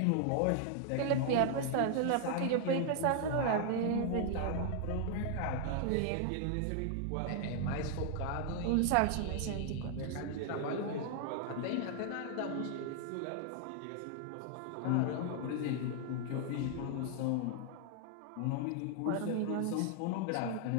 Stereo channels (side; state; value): both; different; correlation 0.00